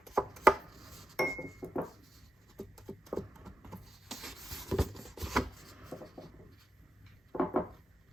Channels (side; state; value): both; normal; correlation 0.84